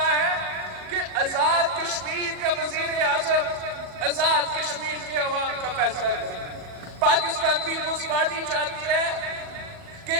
ہے کہ آزاد کشمیر کا وزیر اعظم آزاد کشمیر کے عوام کا فیصلہ کرے. پاکستان پیپلز پارٹی چاہتی ہے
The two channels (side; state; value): left; late; 40 ms